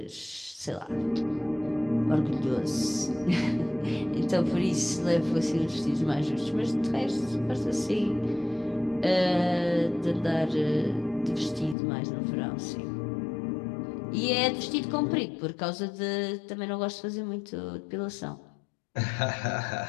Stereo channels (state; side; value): drops out; right; at 11.8 s